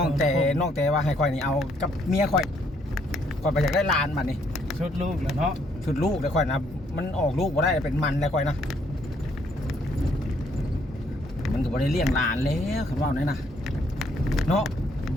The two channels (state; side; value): normal; both; correlation 0.69